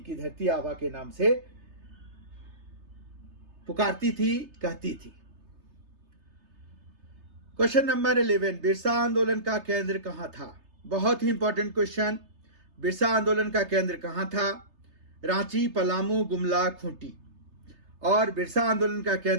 धरती आवा के नाम से पुकारती थी, कहती थी। क्वेश्चन नंबर 11, बिरसा आंदोलन का केंद्र कहां था? बहुत ही इंपॉर्टेंट क्वेश्चन। बिरसा आंदोलन का केंद्र कहां था? रांची, पलामू, गुमला, खूंटी। और बिरसा आंदोलन का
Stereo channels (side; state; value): left; late; 3.3 ms